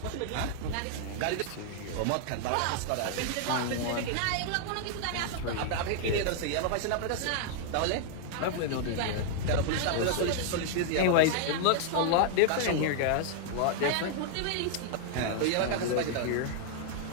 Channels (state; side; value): different; both; correlation -0.01